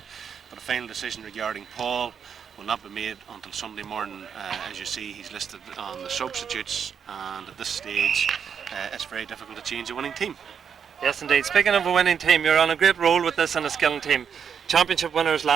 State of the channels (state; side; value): quieter; left; 7.3 dB